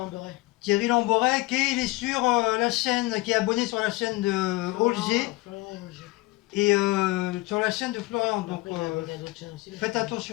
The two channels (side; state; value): right; quieter; 20.8 dB